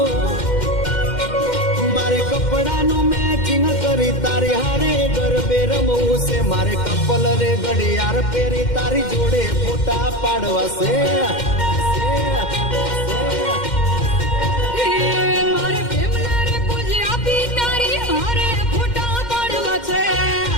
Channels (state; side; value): late; right; 2.1 ms